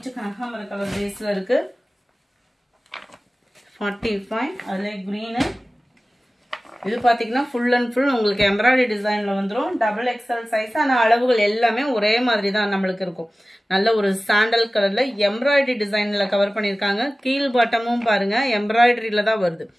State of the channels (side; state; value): both; normal; correlation 0.97